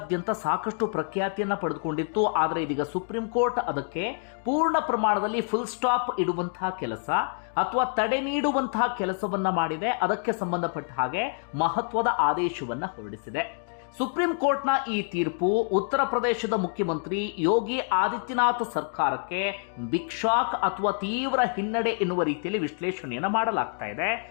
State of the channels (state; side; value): silent; right; 60 dB below the other